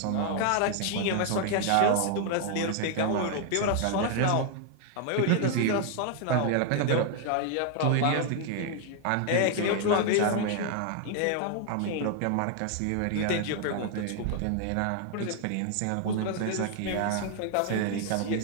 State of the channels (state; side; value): different; both; correlation 0.00